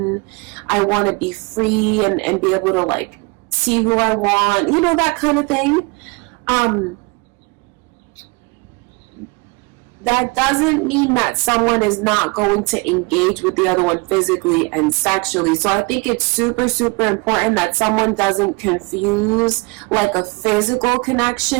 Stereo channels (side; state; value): left; quieter; 27.5 dB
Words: I want to be free and be able to see who I want, that kind of thing. That doesn't mean that someone is not going to engage with the other one physically and sexually. So I think it's super, super important that someone doesn't confuse a physical